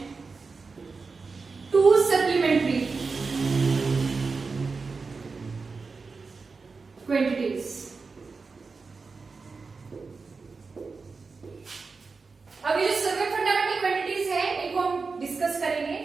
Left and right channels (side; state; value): left; quieter; 4.5 dB